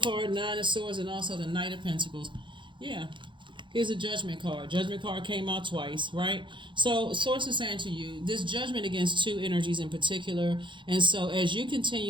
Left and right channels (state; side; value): late; left; 0.23 ms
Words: Nine of Swords, and also the Knight of Pentacles. Yeah. Here's a Judgment card. Judgment card came out twice, right? So Source is saying to you, this judgment against two energies in particular. And so as you